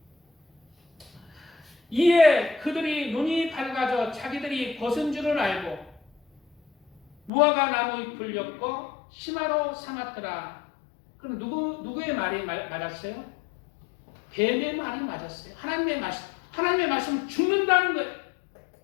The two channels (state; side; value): drops out; right; at 7.3 s